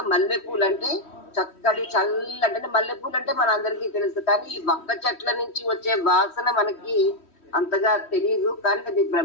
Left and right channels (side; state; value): right; late; 3.1 ms